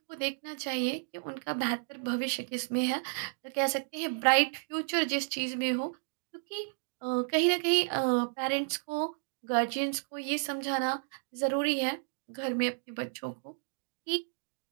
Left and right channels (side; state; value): left; silent; digital silence